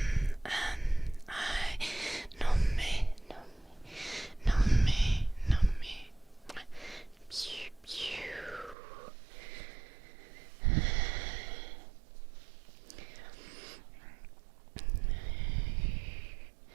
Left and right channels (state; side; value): drops out; left; at 8.8 s